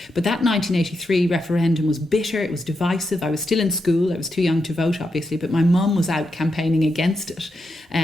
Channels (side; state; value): both; normal; correlation 0.85